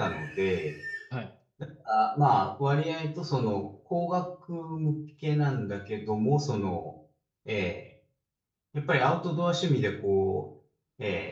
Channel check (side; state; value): both; identical; correlation 1.00